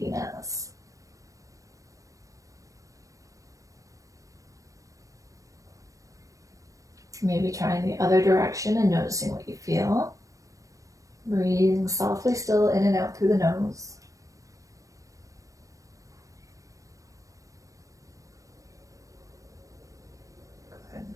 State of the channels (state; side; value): late; left; 0.16 ms